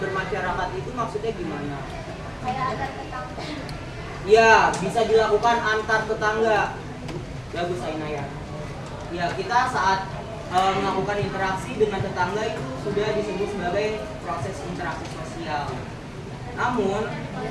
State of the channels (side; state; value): both; identical; correlation 1.00